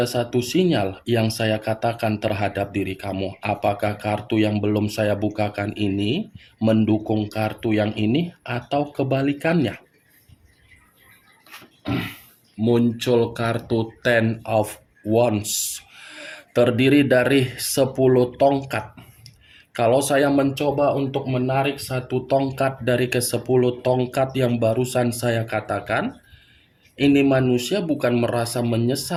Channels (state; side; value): identical; both; correlation 1.00